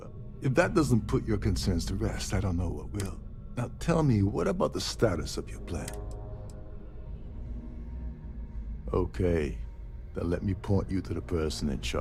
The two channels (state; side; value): identical; both; correlation 1.00